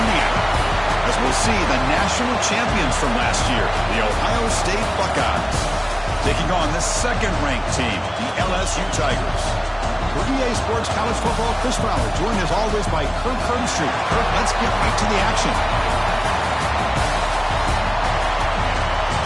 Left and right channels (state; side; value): identical; both; correlation 1.00